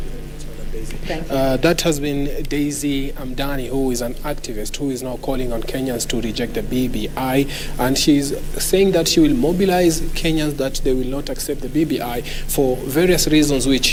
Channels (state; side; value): identical; both; correlation 1.00